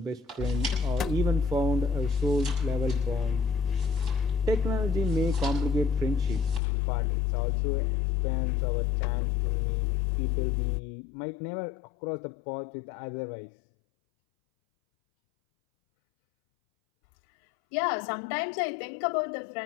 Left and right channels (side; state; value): right; drops out; at 6.6 s